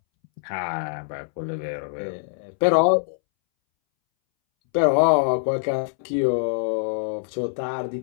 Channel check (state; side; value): silent; right; 63 dB below the other